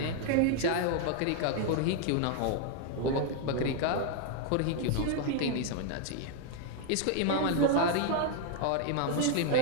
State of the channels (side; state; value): both; different; correlation 0.00